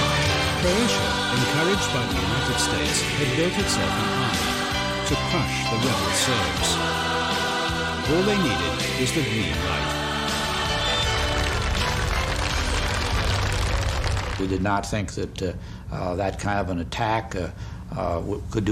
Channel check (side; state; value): both; identical; correlation 1.00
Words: Croatia, encouraged by the United States, had built itself an army to crush the rebel Serbs. All they needed was the green light. We did not think that that kind of an attack could